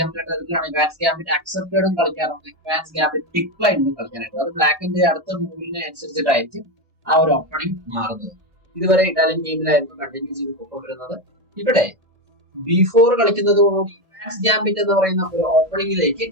അതിലാണ്. ഇവാൻസ് ഗാംബിറ്റ് അക്സെപ്റ്റഡും കളിക്കാറുണ്ട്, ഇവാൻസ് ഗാംബിറ്റ് ഡിക്ലൈനും കളിക്കാനായിട്ട്. അത് ബ്ലാക്കിന്റെ അടുത്ത മൂവിനെ അനുസരിച്ചിട്ടായിരിക്കും ആ ഒരു ഓപ്പണിംഗ് മാറുന്നത്. ഇതുവരെ ഇറ്റാലിയൻ ഗെയിമിലായിരുന്നു കണ്ടിന്യൂ ചെയ്ത് പോയിക്കൊണ്ടിരുന്നത്. ഇവിടെ B4 കളിക്കുന്നതോടുകൂടി ഇവാൻസ് ഗാംബിറ്റ് എന്ന് പറയുന്ന ഒരു ഓപ്പണിംഗിലേക്ക്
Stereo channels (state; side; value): late; left; 1.8 ms